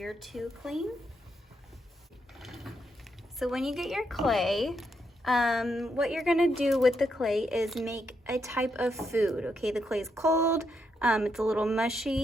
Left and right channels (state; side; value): normal; both; correlation 0.80